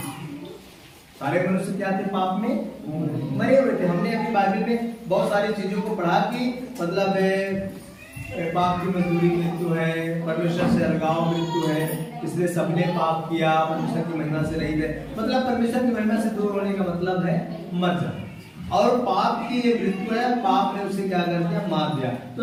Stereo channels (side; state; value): both; identical; correlation 1.00